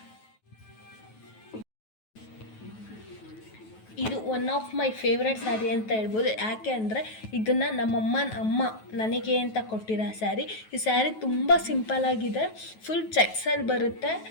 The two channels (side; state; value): right; late; 9.3 ms